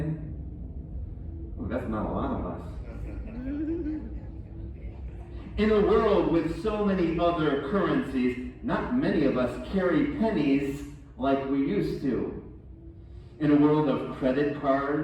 Oh, that's not a lot of us. In a world with so many other currencies, not many of us carry pennies like we used to. In a world of credit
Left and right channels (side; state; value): both; identical; correlation 1.00